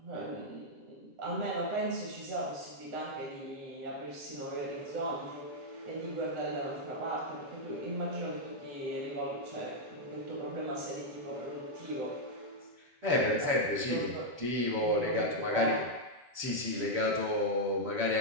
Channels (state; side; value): late; left; 7.5 ms